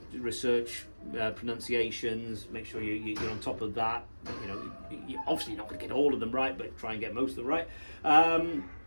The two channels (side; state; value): both; inverted; correlation -1.00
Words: research pronunciations, make sure you're on top of that. Obviously you're not going to get all of them right, but try and get most of them right.